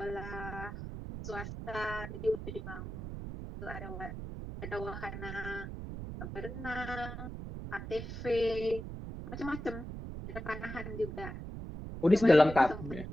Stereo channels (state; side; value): noise; right; rumble, 8 dB below the sound